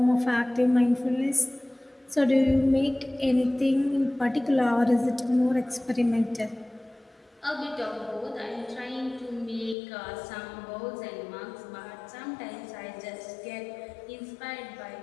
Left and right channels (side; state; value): right; drops out; at 9.8 s